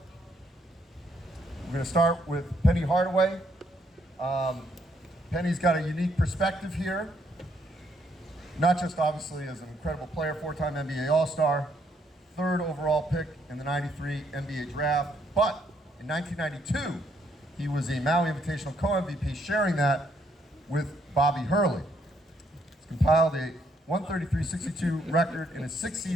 We're going to start with Penny Hardaway. Penny's got a unique perspective here, not just obviously as an incredible player, four-time NBA All-Star, third overall pick in the '93 NBA draft, but in 1992, he was a Maui Invitational co-MVP, sharing that with Bobby Hurley. He's compiled a 133-62 record in his 6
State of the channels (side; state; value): both; normal; correlation 0.71